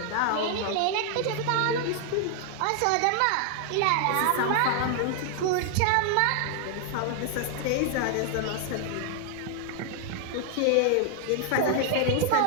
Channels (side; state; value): both; different; correlation 0.00